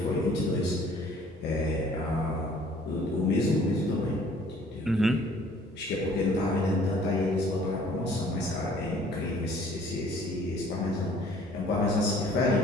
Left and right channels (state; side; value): normal; both; correlation 0.55